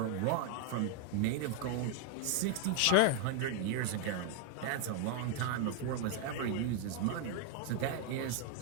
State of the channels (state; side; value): different; both; correlation 0.01